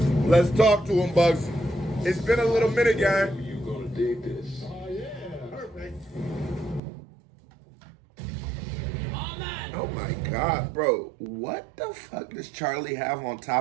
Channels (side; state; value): left; drops out; at 6.8 s